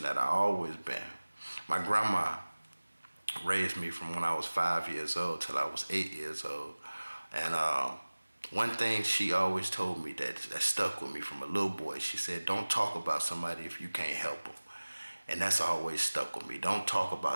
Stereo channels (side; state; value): both; inverted; correlation -1.00